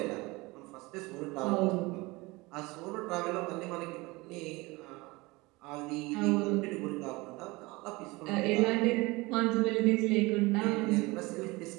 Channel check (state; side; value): quieter; left; 23.0 dB